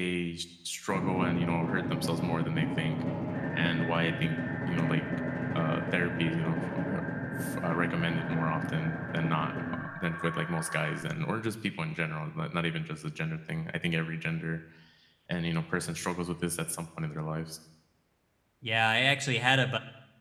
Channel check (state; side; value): identical; both; correlation 1.00